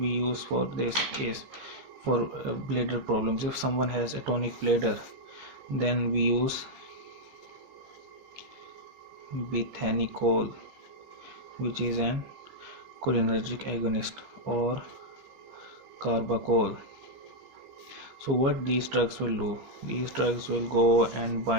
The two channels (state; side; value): late; left; 15 ms